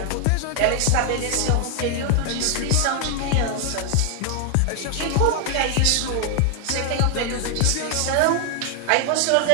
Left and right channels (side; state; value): both; different; correlation 0.00